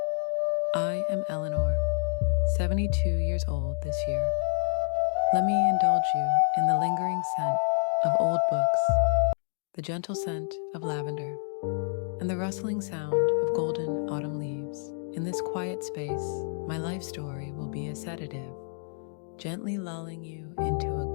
I am Eleanor, 72 years old this year. Let me indulge you in the lingering scent of old books, the gentle scent of lavender, and the rustling sound of golden autumn leaves. In this quiet space, my life story will be a sedative, gently lulling you into a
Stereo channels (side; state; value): right; silent; 59 dB below the other